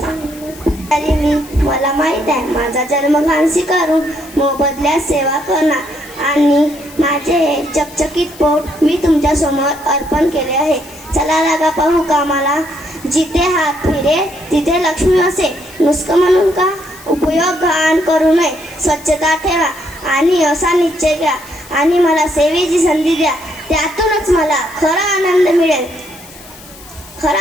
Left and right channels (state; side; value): noise; left; hiss, 20 dB below the sound